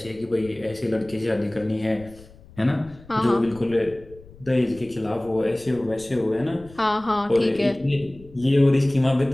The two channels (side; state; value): left; noise; rumble, 22 dB below the sound